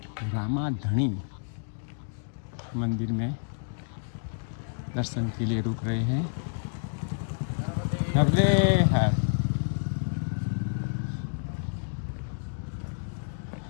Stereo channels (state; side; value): silent; right; digital silence